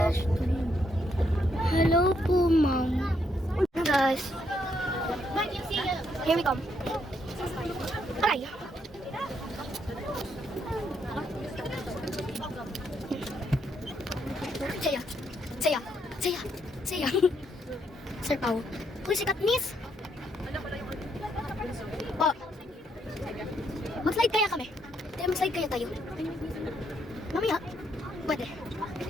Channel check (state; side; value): normal; both; correlation 0.75